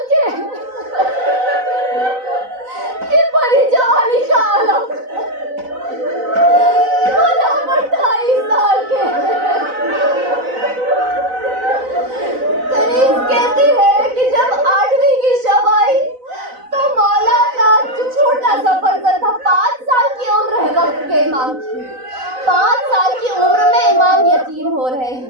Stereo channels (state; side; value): late; left; 4.0 ms